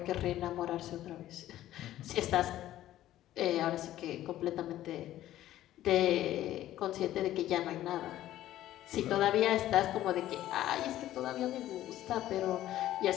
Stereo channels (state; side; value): quieter; right; 13.6 dB